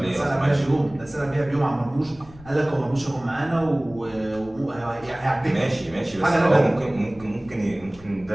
سنه بيها بيوم، ده سنه بيها بيوم عن مرموش. قال لك هو مرموش هيكون معانا وهيعديك. ماشي بس حاجة هو نبات. ممكن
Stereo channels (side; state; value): left; noise; rumble, 22 dB below the sound